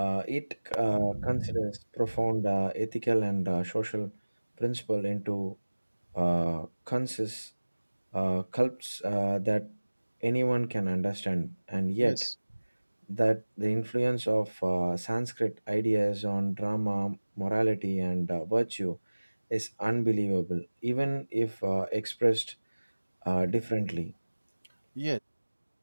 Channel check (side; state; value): both; inverted; correlation -1.00